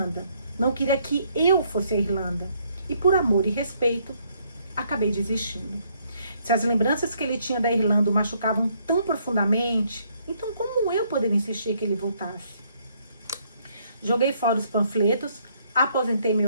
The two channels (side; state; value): both; inverted; correlation -0.69